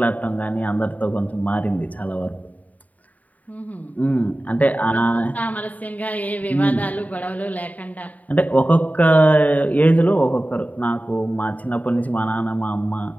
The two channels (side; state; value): right; late; 0.073 ms